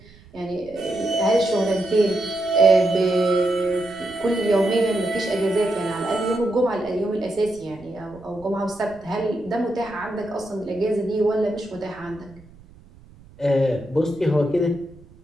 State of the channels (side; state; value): right; noise; rumble, 24 dB below the sound